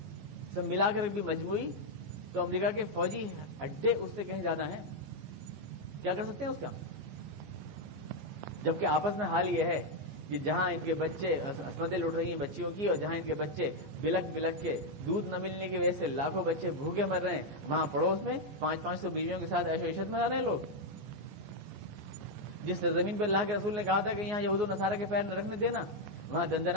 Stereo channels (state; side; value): late; left; 14 ms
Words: سب ملا کر بھی مجموعی، تو امریکہ کے فوجی اڈے اس سے کہیں زیادہ ہیں. کیا کر سکتے ہیں اس کا؟ جبکہ آپس میں حال یہ ہے کہ جہاں ان کے بچے عصمتیں لوٹ رہی ہیں بچیوں کی، اور جہاں ان کے بچے بلک بلک کے دودھ نہ ملنے کی وجہ سے لاکھوں بچے بھوکے مر رہے ہیں، وہاں پڑوس میں 500 بیویوں کے ساتھ عیش و عشرت میں رہ رہے ہیں لوگ. جس زمین پر اللہ کے رسول نے کہا تھا کہ یہاں یہود و نصارہ کے پیر نہ رکھنے دینا، وہاں